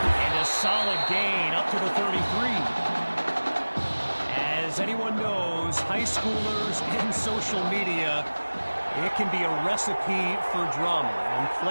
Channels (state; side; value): inverted; both; correlation -1.00